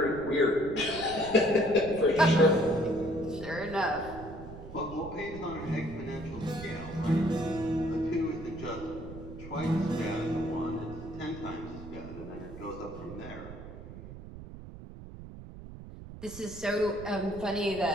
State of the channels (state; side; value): noise; right; rumble, 13 dB below the sound